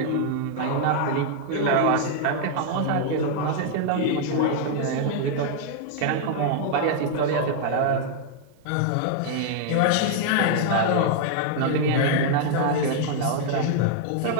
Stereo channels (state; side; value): different; both; correlation -0.01